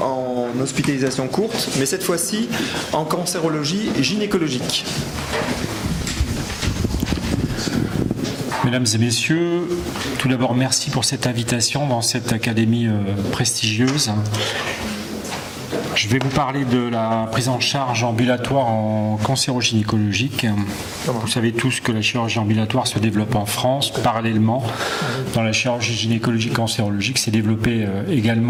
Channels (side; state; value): both; identical; correlation 1.00